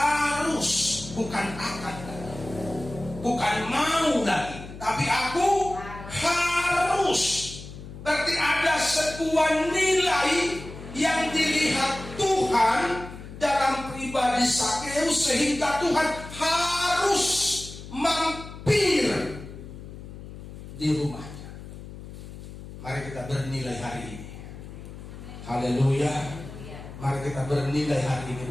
bukan akan lagi, bukan mau lagi, tapi aku harus. Berarti ada sebuah nilai yang dilihat Tuhan dalam pribadi Sakeus, sehingga Tuhan harus mampir di rumahnya. Mari kita bernilai hari ini. Haleluya. Mari kita bernilai hari ini.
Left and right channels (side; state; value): left; noise; hum, 13 dB below the sound